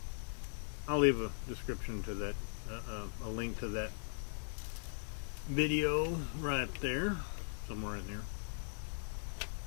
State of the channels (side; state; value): right; silent; digital silence